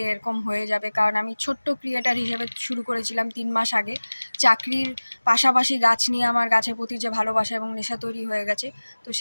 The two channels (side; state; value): both; inverted; correlation -1.00